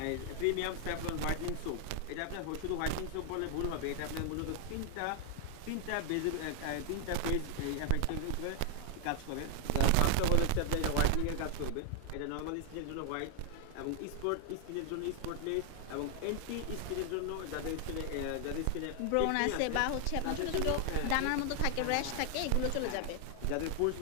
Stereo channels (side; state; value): both; different; correlation 0.00